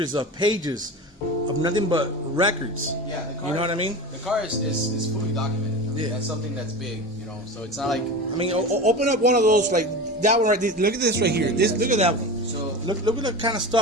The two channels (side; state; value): both; normal; correlation 0.29